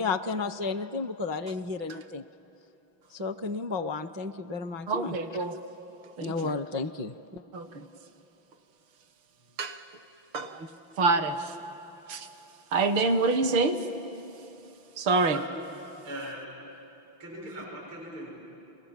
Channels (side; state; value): left; late; 6.0 ms